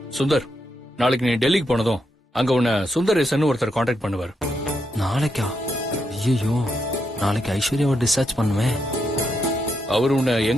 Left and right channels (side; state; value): both; normal; correlation 0.81